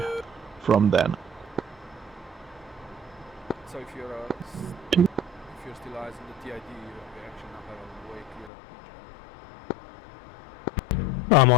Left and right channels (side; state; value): right; drops out; at 8.5 s